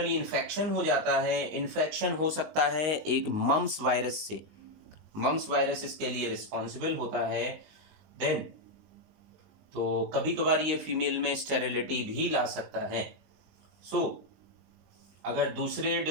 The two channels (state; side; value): late; left; 19 ms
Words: इन्फेक्शन हो जाता है, इन्फेक्शन हो सकता है एक मम्स वायरस से, मम्स वायरस इसके लिए रिस्पॉन्सिबल होता है। देन तो कभी कभार ये फीमेल में स्टेरिलिटी भी ला सकता है। सो अगर दूसरे